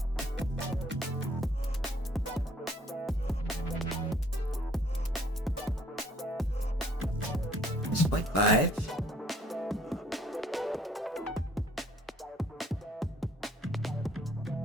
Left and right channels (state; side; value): normal; both; correlation 0.60